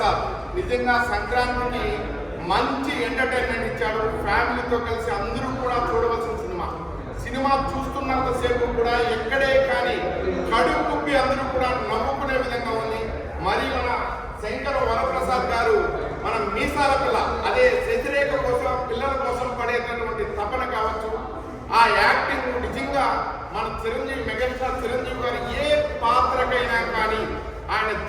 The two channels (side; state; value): both; identical; correlation 1.00